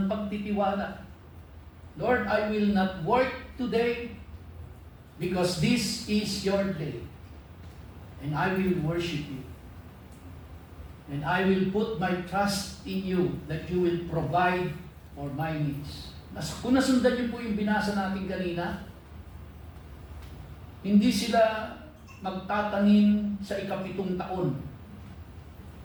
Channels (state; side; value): identical; both; correlation 1.00